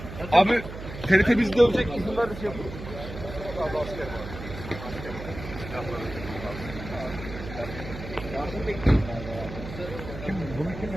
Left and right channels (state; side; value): noise; right; hum, 10 dB below the sound